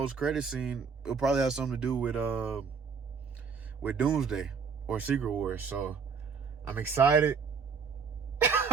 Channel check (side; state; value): left; quieter; 5.7 dB